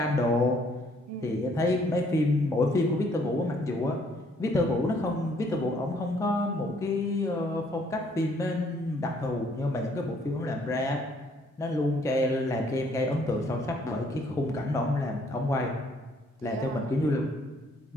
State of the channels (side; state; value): both; normal; correlation 0.65